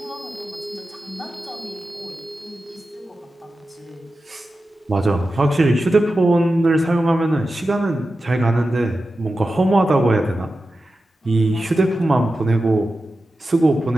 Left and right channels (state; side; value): normal; both; correlation 0.92